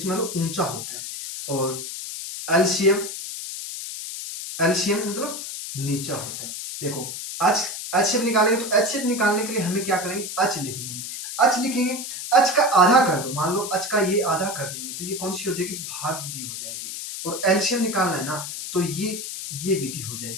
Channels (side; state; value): left; noise; hiss, 7 dB below the sound